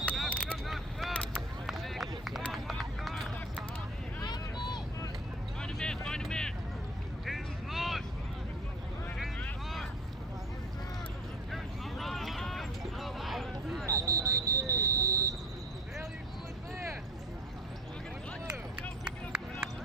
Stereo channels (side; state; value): both; normal; correlation 0.41